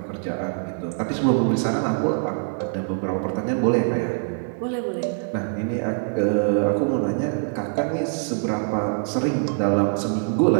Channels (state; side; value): silent; left; digital silence